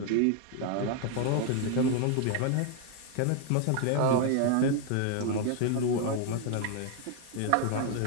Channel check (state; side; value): different; both; correlation 0.00